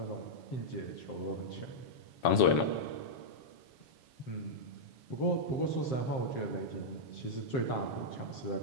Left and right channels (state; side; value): late; right; 7.2 ms